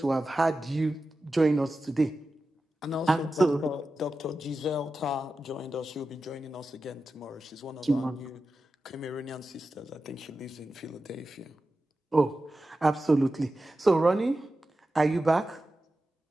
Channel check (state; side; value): normal; both; correlation 0.92